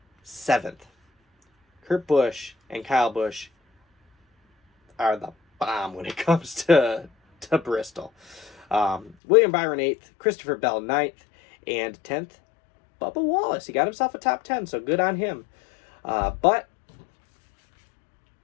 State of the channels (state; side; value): drops out; right; at 9.2 s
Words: 7th. Kurt Busch and Kyle Busch are the bomb when it comes to Bristol. William Byron 8th, Christopher Bell 9th, and 10th, Bubba Wallace. He got himself a top 10, so good on him. But